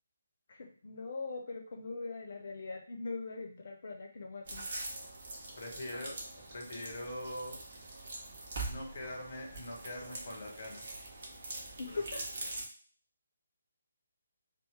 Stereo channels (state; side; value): inverted; both; correlation -0.79